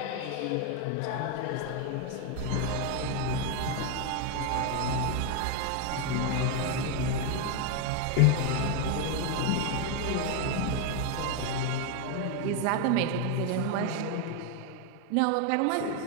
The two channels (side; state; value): both; different; correlation 0.01